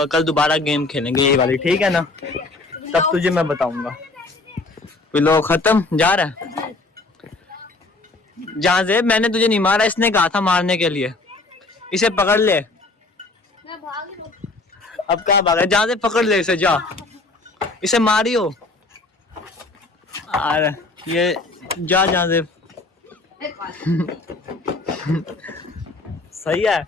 कल दोबारा गेम खेलेंगे ये वाली, ठीक है ना, तब तुझे मैं बताऊंगा। लो खत्म, जा रहा है जहाँ से मैंने तुझे नहीं मारा, इसने कहा था मारने के लिए, इसे पकड़ ले। अब कहाँ भागा, जहाँ से पकड़ ले इसे, जा इसे मारियो। अरे ये जा जहाँ से सही है,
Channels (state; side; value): quieter; right; 3.3 dB